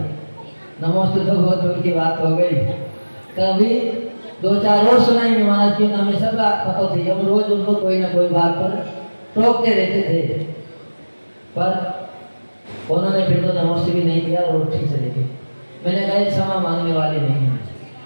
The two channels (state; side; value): inverted; both; correlation -1.00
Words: नमोस्तु तो बहुत दूर की बात हो गई, कभी 2-4 रोज सुनाई नहीं महाराज की, हमें सब पता थी, हम रोज उनको कोई ना कोई बात पर टोकते रहते थे, पर उन्होंने फिर तो नमोस्तु भी नहीं किया और उठ के चले गए। मैंने कहा ये क्षमा मांगने वाले नहीं हैं,